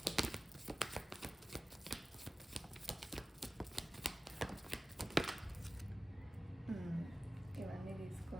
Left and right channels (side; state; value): both; normal; correlation 0.95